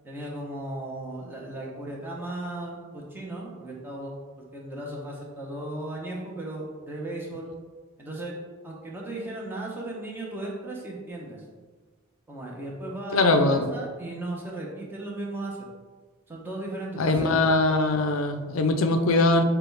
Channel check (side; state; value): both; normal; correlation 0.21